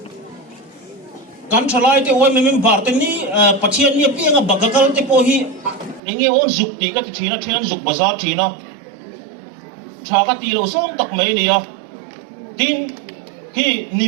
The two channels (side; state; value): left; drops out; at 6.0 s